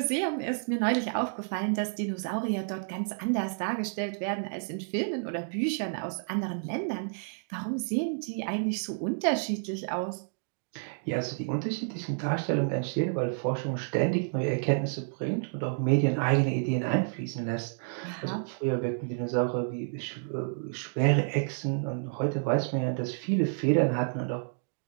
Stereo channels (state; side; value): silent; left; digital silence